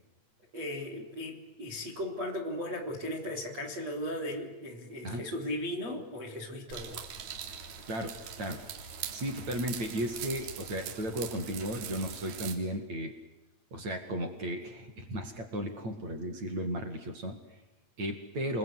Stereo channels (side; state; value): left; late; 9.2 ms